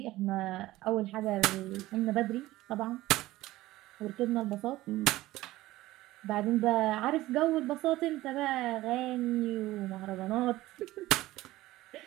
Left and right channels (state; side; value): quieter; left; 17.0 dB